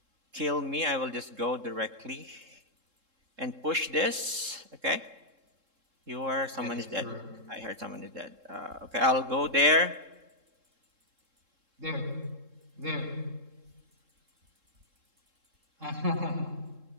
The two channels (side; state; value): left; late; 3.7 ms